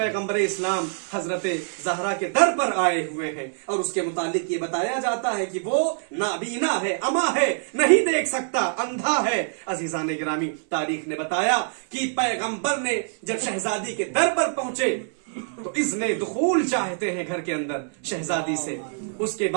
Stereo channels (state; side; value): silent; left; 62 dB below the other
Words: इस्लाम हजरत ज़हरा के दर पर आए हुए हैं और उसके मुतालिक ये बताया जाता है कि वो नाबीना है, अमा है, नहीं देख सकता, अंधा है। अजीजान गिरामी, तारीख ने बताया कि पैगंबर ने जब शहजादी के दर पर पहुंचे तो इज़्ने दुखूल चाहते हैं घर के अंदर शहजादी से। उसके